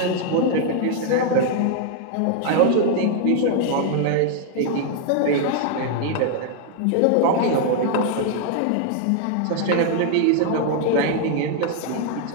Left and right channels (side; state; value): both; different; correlation 0.00